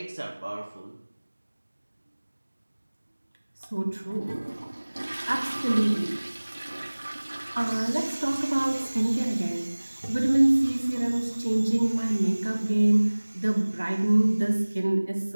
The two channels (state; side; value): inverted; both; correlation -1.00